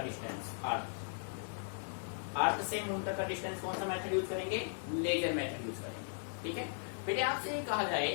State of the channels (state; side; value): silent; right; digital silence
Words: डिस्टेंस, अर्थ से मून तक का डिस्टेंस कौन सा मेथड यूज करेंगे, लेजर मेथड यूज करेंगे। ठीक है बेटे, आपसे कहा जाए